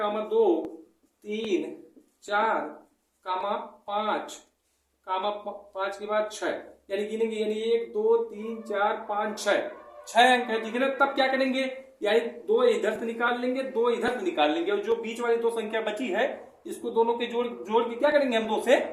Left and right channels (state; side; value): identical; both; correlation 1.00